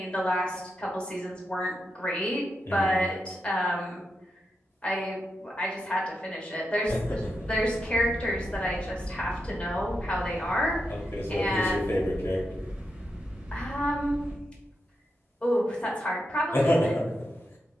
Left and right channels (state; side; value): normal; both; correlation 0.86